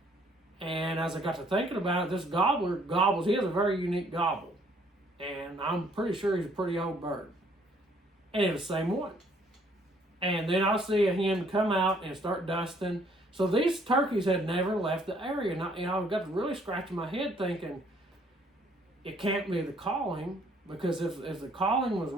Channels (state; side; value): normal; both; correlation 0.63